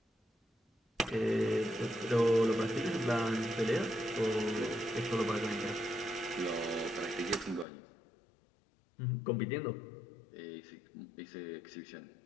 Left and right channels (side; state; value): right; drops out; at 7.7 s